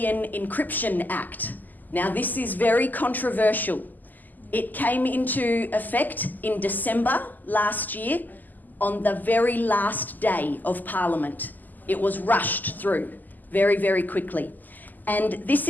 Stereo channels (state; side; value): late; right; 0.085 ms